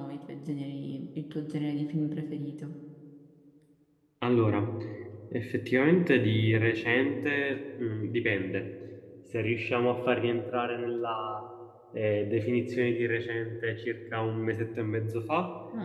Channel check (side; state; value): both; identical; correlation 1.00